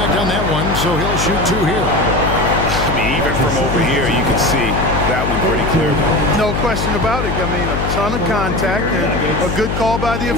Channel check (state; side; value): noise; left; hum, 3 dB below the sound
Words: on that one, so he'll shoot 2 here. I mean, even from over here, you can see that one pretty clearly. No question about it. I mean, a ton of contact and a good call by the